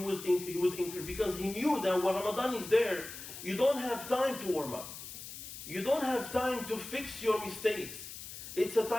increase, because he knew that when Ramadan is there, you don't have time to warm up. You don't have time to fix your mistakes. It's a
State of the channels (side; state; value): left; noise; hiss, 11 dB below the sound